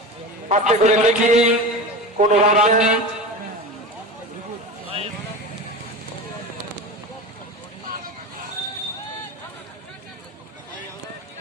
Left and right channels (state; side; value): normal; both; correlation 0.28